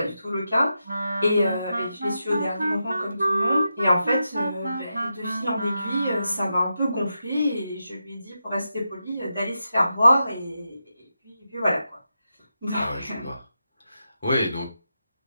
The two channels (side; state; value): both; inverted; correlation -0.87